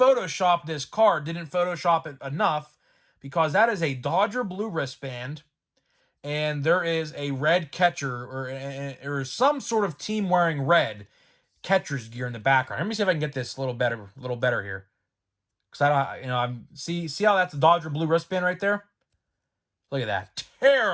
this card didn't photoshop it enough, because that is a Dodger blue wristband, and there is a red catcher or some sort of team wearing red catcher's gear in the background. Let me see if I can get this a little better here, because I'm see how that's a Dodger blue wristband right there. Look at that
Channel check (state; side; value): identical; both; correlation 1.00